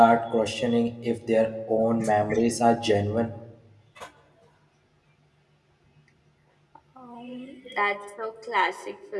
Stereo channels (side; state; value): both; identical; correlation 1.00